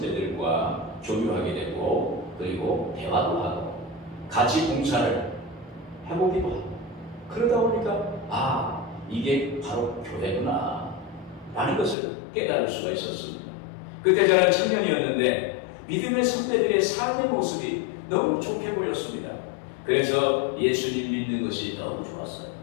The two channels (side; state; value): right; drops out; at 12.0 s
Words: 교류하게 되고 그리고 대화도 하고 같이 봉사를 해보기도 하고 그러다 보니까 이게 바로 교회구나 라는 것을 깨달을 수가 있었습니다. 그때 저는 청년이었는데 믿음의 선배들의 삶의 모습이 너무 좋게 보였습니다. 그래서 예수님 믿는 것이 너무 좋았어요.